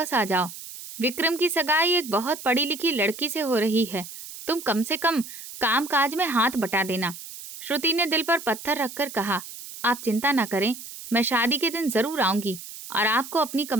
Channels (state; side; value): noise; right; hiss, 13 dB below the sound